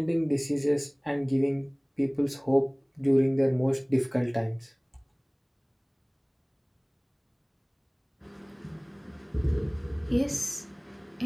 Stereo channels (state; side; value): identical; both; correlation 1.00